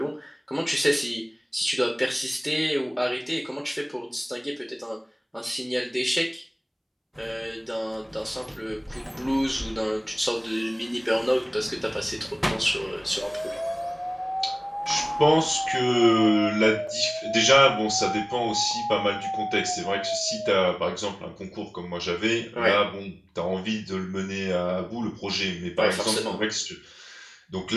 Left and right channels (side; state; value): both; identical; correlation 1.00